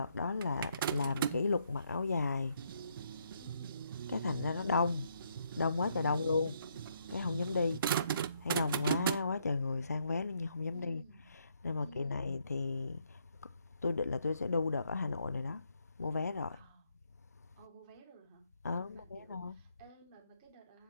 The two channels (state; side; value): inverted; both; correlation -0.73